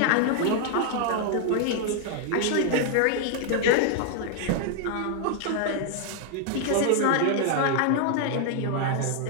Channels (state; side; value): different; both; correlation 0.00